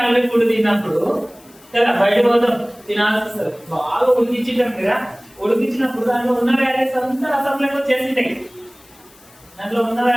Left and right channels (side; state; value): left; noise; hiss, 27 dB below the sound